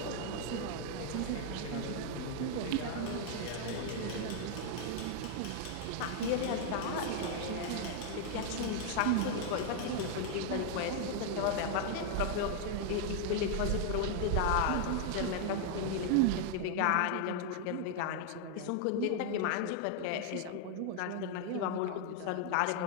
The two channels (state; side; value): different; both; correlation 0.00